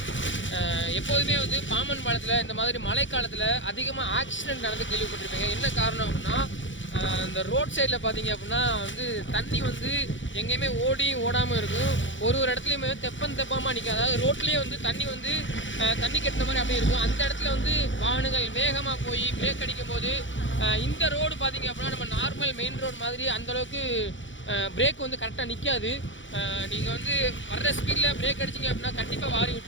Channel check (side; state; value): right; late; 0.55 ms